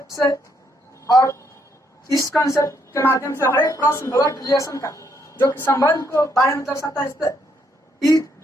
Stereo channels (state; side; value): normal; both; correlation 0.72